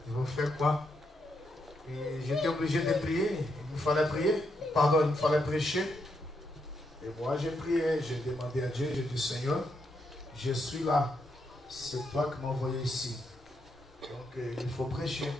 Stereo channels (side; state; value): both; normal; correlation 0.80